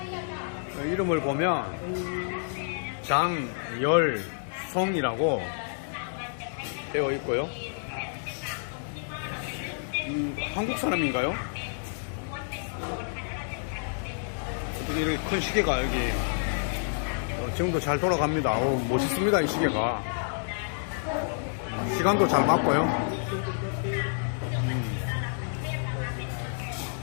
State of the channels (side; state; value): right; silent; digital silence